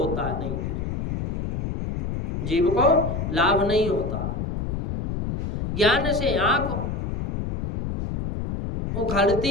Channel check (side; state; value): left; noise; rumble, 3 dB below the sound